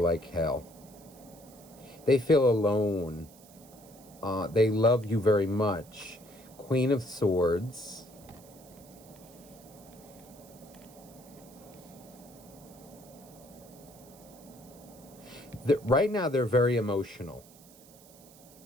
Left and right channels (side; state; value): right; noise; hiss, 23 dB below the sound